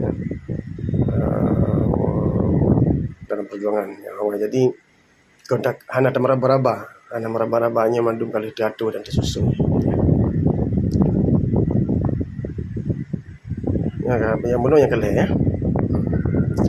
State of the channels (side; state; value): both; identical; correlation 1.00